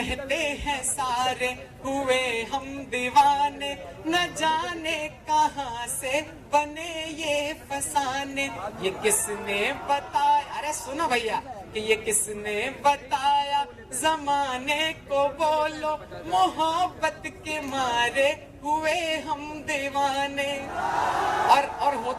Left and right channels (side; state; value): both; identical; correlation 1.00